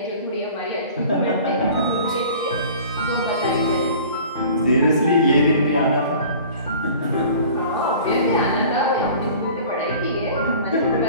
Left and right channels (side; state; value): both; inverted; correlation -0.45